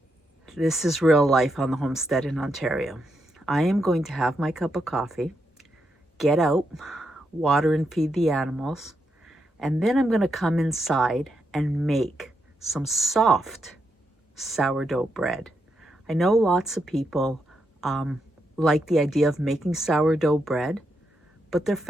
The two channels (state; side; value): normal; both; correlation 0.82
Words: This is real life on the homestead in Ontario. I am going to have my cup of coffee, get out, water and feed the animals, and then I'm going to come inside and make some soft sourdough bread. I know lots of people like the idea of making sourdough bread, but their